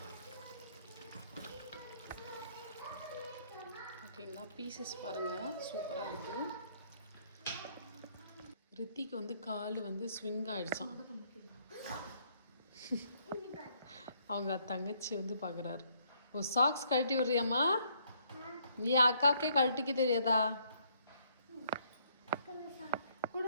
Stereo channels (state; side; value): inverted; both; correlation -0.68